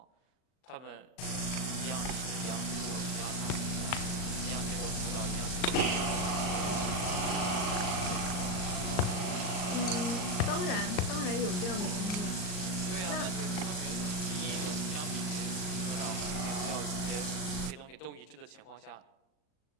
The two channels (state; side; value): late; right; 39 ms